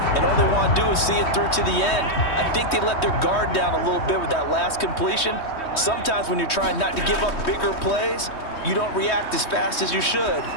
and all they want to do is see it through to the end. I think they let their guard down a little bit with that last completion. Sometimes when you're trying not to give up bigger plays, you don't react as fast as you should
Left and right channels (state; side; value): late; right; 3.2 ms